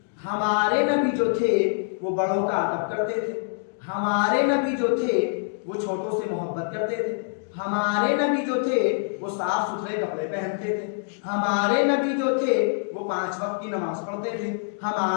ہمارے نبی جو تھے وہ بڑوں کا ادب کرتے تھے، ہمارے نبی جو تھے وہ چھوٹوں سے محبت کرتے تھے، ہمارے نبی جو تھے وہ صاف ستھرے کپڑے پہنتے تھے، ہمارے نبی جو تھے وہ 5 وقت کی نماز پڑھتے تھے،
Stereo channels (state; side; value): silent; right; digital silence